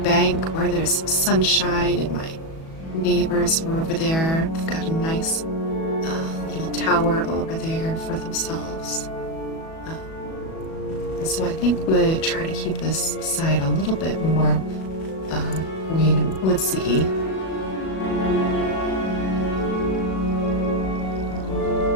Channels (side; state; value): right; late; 37 ms